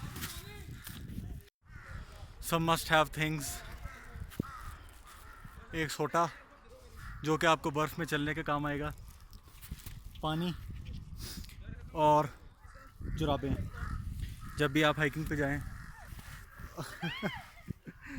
Some must have things. एक सोटा जो कि आपको बर्फ़ में चलने के काम आएगा, पानी और जुराबें जब भी आप हाइकिंग पे जाएं।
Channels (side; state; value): both; identical; correlation 1.00